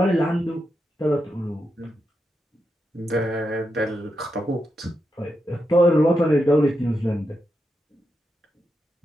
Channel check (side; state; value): both; normal; correlation 0.86